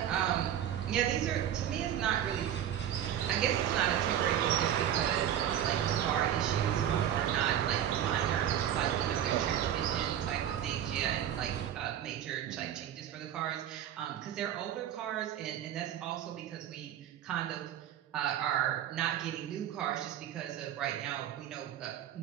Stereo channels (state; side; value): quieter; left; 10.5 dB